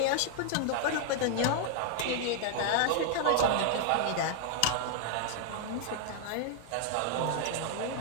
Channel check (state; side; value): different; both; correlation -0.01